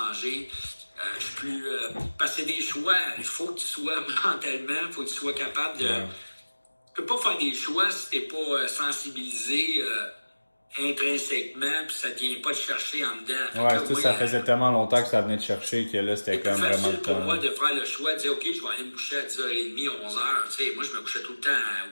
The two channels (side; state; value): both; inverted; correlation -1.00